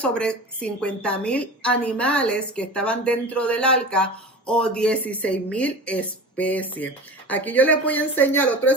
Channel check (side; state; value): both; normal; correlation 0.33